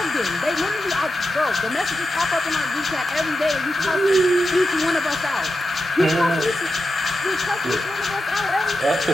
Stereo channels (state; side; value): normal; both; correlation 0.89